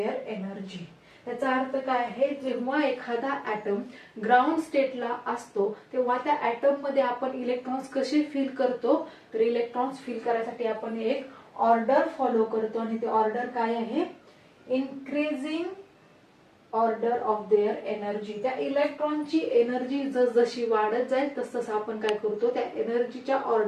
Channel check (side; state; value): both; identical; correlation 1.00